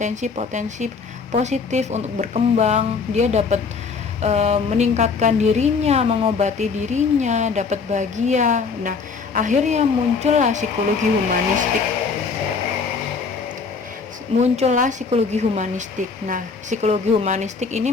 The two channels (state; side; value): quieter; right; 5.1 dB